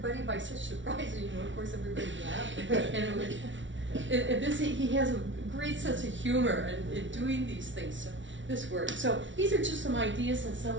by such surprise, and, you know, of course, everybody laughed. And it was, he has a great sense of humor in doing these things. So this worked. So these are just some ideas, and some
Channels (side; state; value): left; late; 0.55 ms